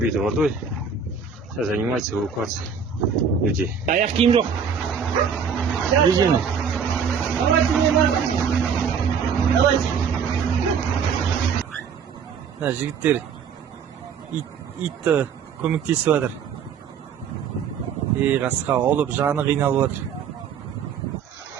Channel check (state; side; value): quieter; left; 6.7 dB